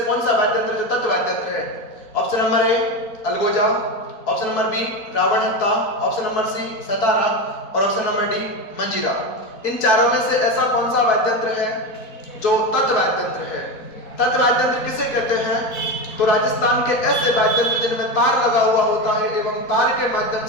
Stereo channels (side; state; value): right; late; 4.2 ms